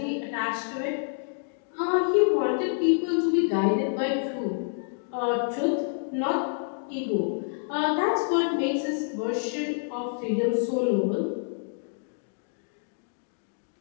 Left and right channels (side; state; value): right; silent; digital silence